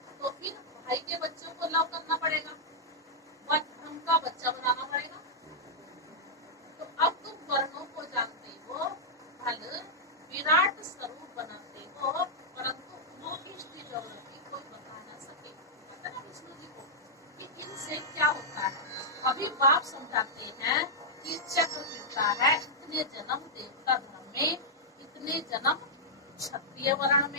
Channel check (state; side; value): normal; both; correlation -0.08